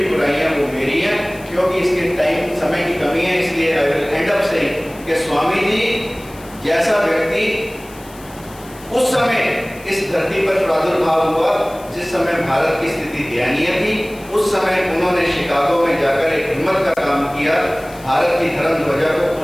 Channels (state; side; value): noise; left; hiss, 22 dB below the sound